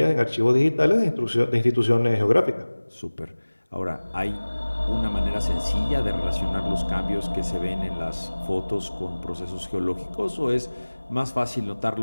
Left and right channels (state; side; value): inverted; both; correlation -1.00